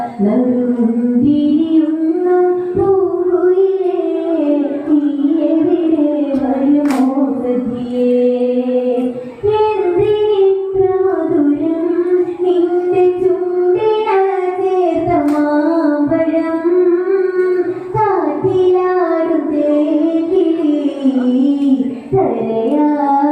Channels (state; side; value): identical; both; correlation 1.00